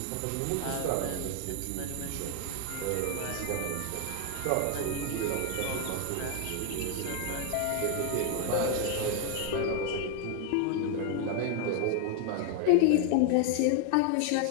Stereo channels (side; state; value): both; different; correlation 0.00